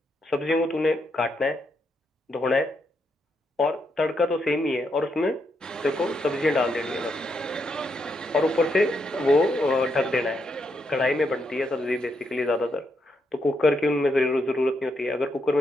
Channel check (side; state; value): both; normal; correlation 0.80